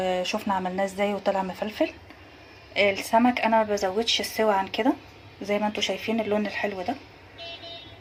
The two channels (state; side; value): identical; both; correlation 1.00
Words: عملناه ازاي وطلع مفلفل. السمك انا ما بزودش السوا عن كده زي ما انتوا شايفين اللون الحلو ده،